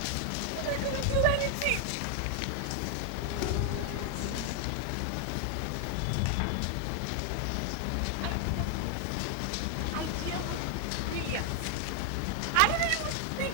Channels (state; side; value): different; both; correlation 0.00